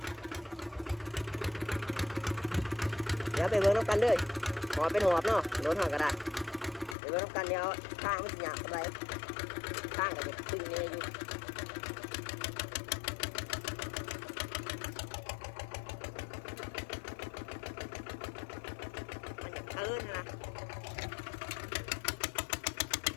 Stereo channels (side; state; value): right; drops out; at 7.0 s